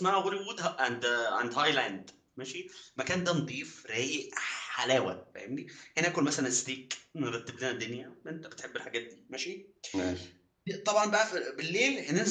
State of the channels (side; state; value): both; identical; correlation 1.00